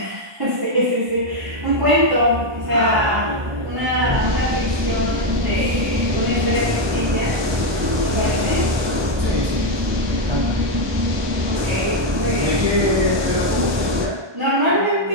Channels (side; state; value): left; late; 1.2 ms